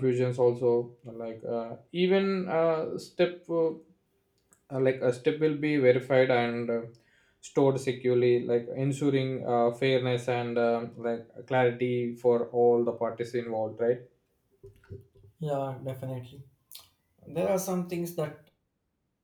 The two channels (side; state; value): both; identical; correlation 1.00